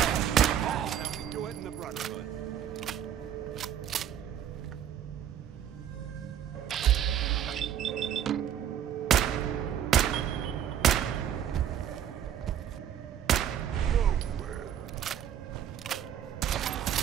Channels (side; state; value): left; quieter; 9.8 dB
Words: How we do it in the Brotherhood.